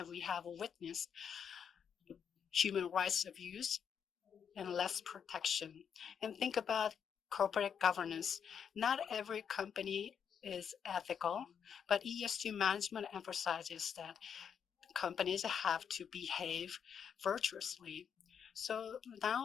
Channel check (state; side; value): quieter; right; 7.6 dB